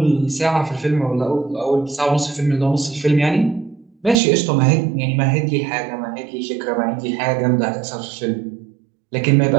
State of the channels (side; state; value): left; drops out; at 4.2 s